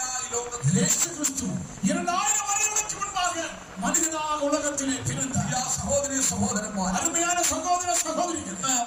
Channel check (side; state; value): both; identical; correlation 1.00